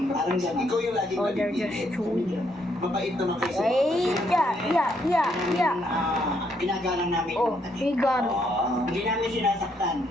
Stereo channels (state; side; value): normal; both; correlation 0.73